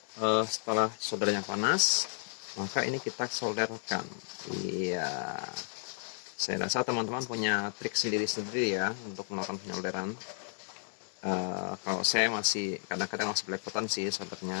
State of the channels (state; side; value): silent; right; 56 dB below the other